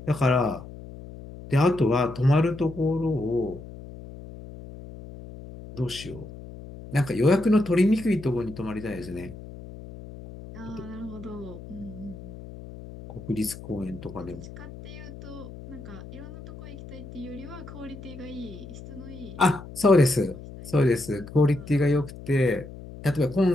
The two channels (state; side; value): noise; left; hum, 14 dB below the sound